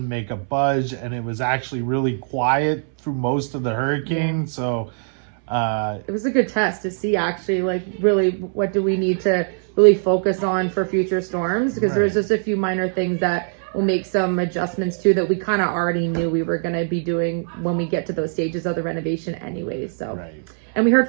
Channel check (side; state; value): left; silent; 64 dB below the other